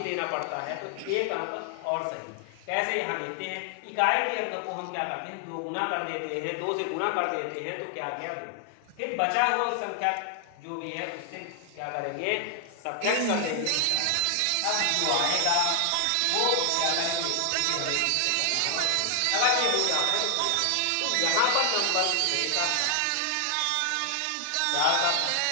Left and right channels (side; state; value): both; different; correlation 0.00